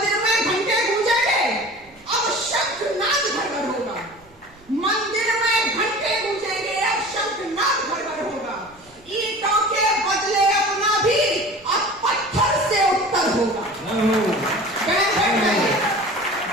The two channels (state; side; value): noise; right; rumble, 29 dB below the sound